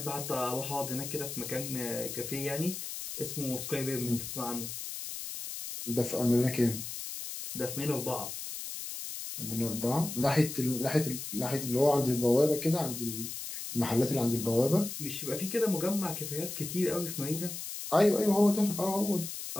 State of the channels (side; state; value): left; noise; hiss, 7 dB below the sound